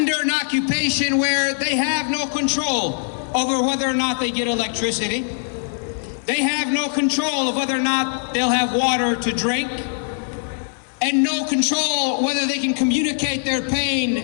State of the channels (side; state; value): right; silent; 58 dB below the other